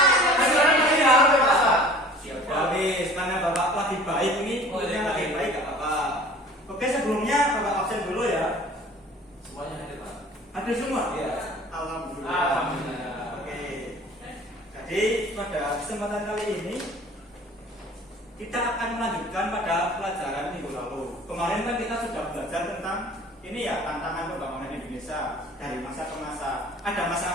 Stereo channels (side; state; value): both; normal; correlation 0.47